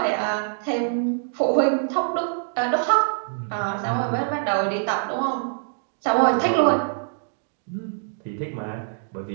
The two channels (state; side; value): silent; left; digital silence